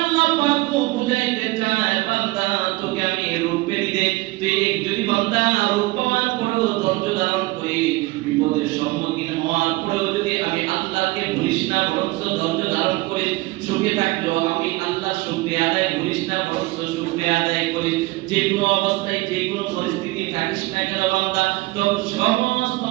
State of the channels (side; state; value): left; quieter; 21.2 dB